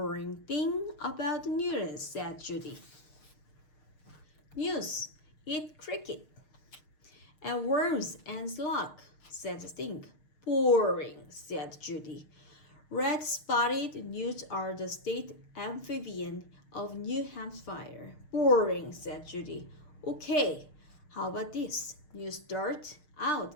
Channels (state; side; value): late; right; 6.5 ms